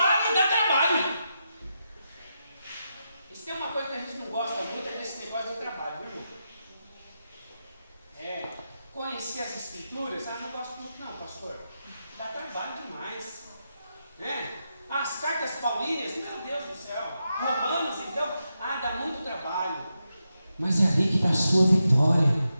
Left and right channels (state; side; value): inverted; both; correlation -0.86